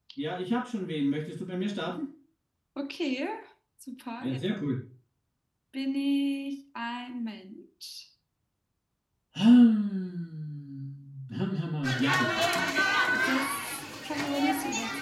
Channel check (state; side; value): identical; both; correlation 1.00